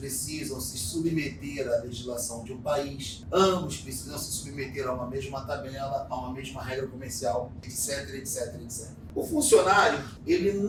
se submeter à legislação de um país, ambos precisam se submeter a uma mesma tabela, a uma mesma regra comercial, etc, etc, etc. O funcionário, ele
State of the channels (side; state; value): both; identical; correlation 1.00